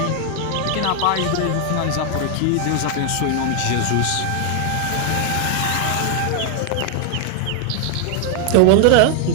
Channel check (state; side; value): different; both; correlation 0.00